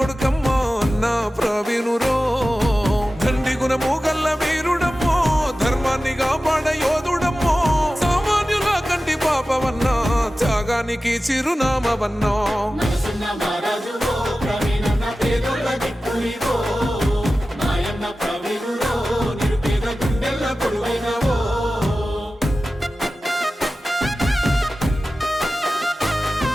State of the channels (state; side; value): normal; both; correlation 0.95